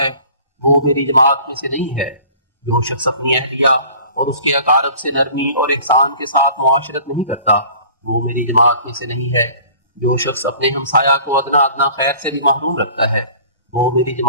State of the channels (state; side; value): inverted; both; correlation -0.48